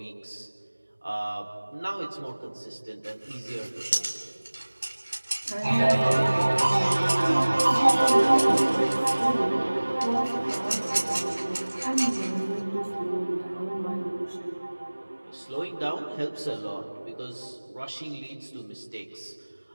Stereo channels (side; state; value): both; inverted; correlation -1.00